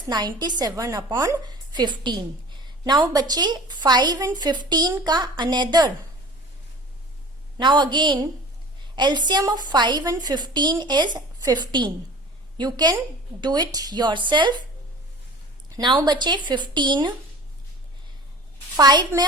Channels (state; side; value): normal; both; correlation 0.41